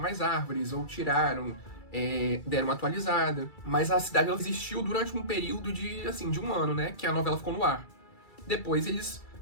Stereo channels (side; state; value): right; late; 2.3 ms